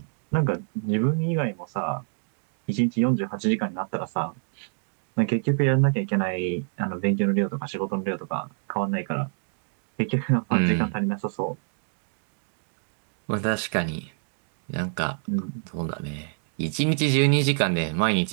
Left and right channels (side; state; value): left; silent; digital silence